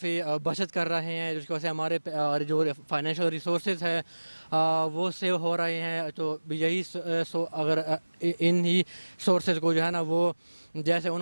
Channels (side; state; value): both; inverted; correlation -1.00